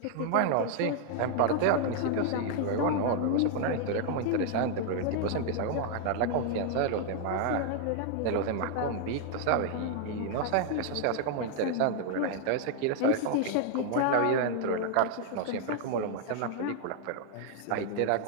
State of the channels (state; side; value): different; both; correlation 0.00